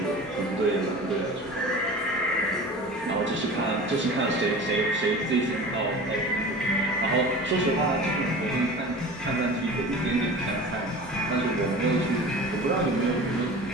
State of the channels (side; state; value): both; normal; correlation 0.37